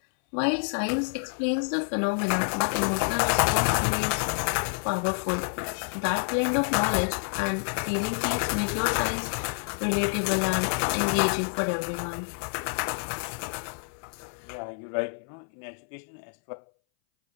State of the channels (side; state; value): right; silent; 60 dB below the other